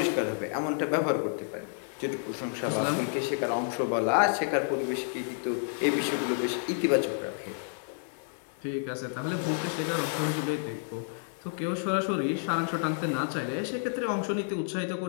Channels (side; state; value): right; silent; digital silence